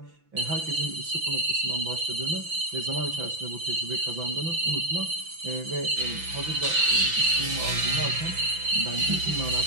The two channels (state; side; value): late; left; 5.9 ms